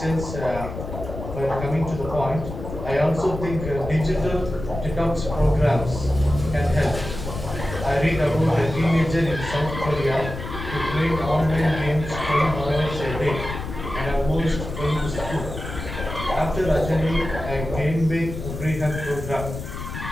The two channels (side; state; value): left; noise; rumble, 8 dB below the sound